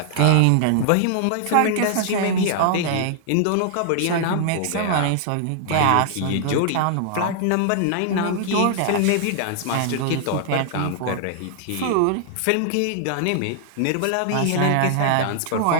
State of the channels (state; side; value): different; both; correlation -0.01